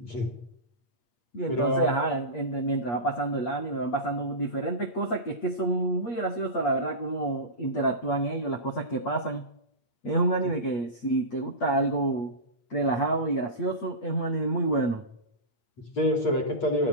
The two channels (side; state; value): right; late; 8.5 ms